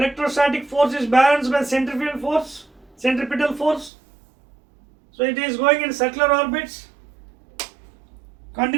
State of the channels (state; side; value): drops out; left; at 3.9 s